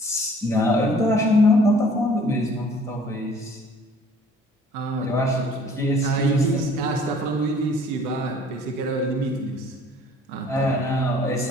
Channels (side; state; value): both; normal; correlation 0.54